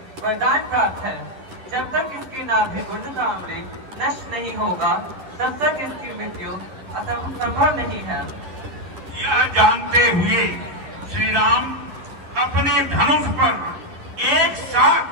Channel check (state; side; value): late; left; 10 ms